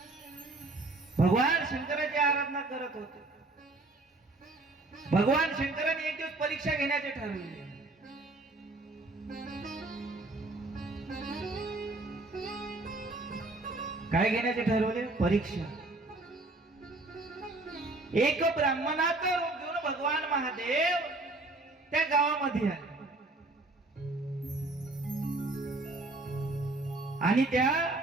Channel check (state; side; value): quieter; left; 3.0 dB